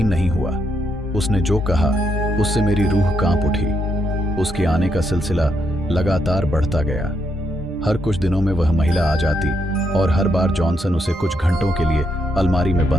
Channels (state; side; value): normal; both; correlation 0.79